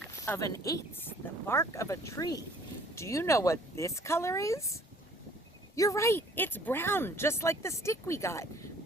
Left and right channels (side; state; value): both; normal; correlation 0.55